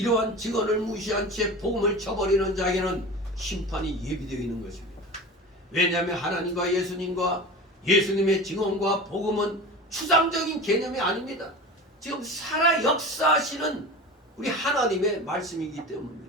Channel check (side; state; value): both; normal; correlation 0.32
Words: 증언을 무시한 채 복음을 저버리는 자에게는 심판이 예비되어 있는 것입니다. 왜냐하면 하나님과 예수님과 예수님의 증언과 복음은 추상적인 개념이 아닙니다. 지금 살아 역사하시는 우리 하나님의 말씀이기